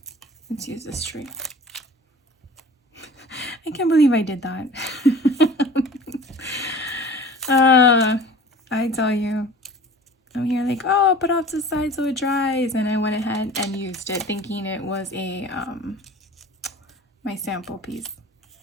Let's use this tree. I can't believe I did that. I tell you, I'm here like, oh, put off to the side so it dries, and I went ahead and used it thinking it was a my sample piece.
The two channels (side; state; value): both; normal; correlation 0.43